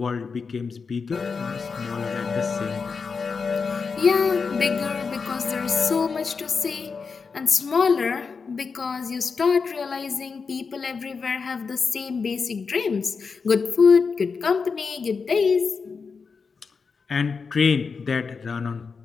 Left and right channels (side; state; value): right; quieter; 5.1 dB